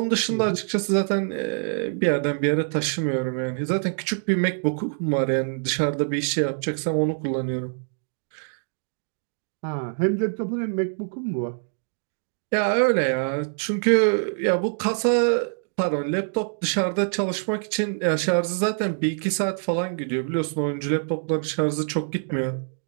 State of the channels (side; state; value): left; silent; digital silence